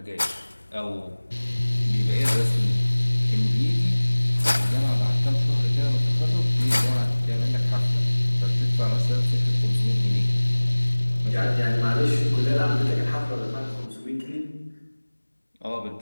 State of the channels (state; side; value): inverted; both; correlation -1.00